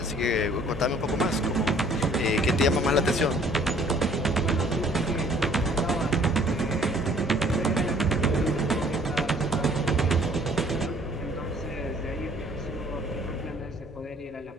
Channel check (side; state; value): both; normal; correlation 0.57